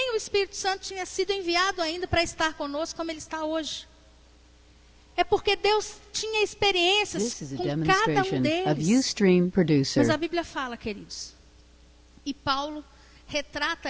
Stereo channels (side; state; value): both; identical; correlation 1.00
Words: o Espírito Santo tinha sido enviado ainda para estar conosco como ele está hoje. É porque Deus tinha experiências This is a com cada um demonstration of deles. Ustream Producer. Mas a Bíblia fala, queridos, e Paulo